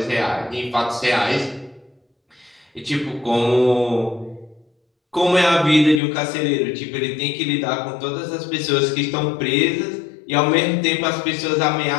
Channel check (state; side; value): drops out; right; at 6.0 s